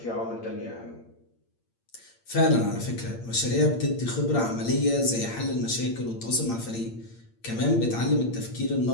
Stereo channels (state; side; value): late; right; 8.7 ms